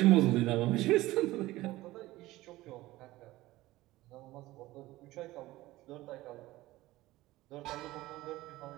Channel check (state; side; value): quieter; left; 17.7 dB